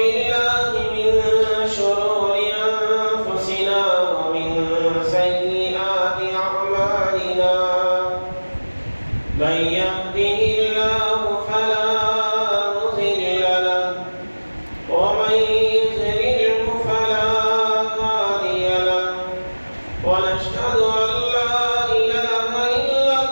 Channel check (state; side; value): inverted; both; correlation -1.00